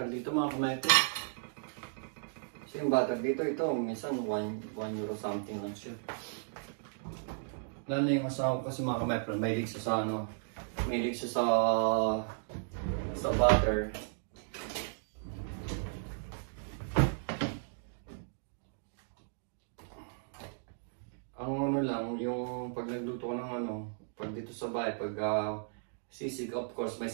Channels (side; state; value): left; silent; digital silence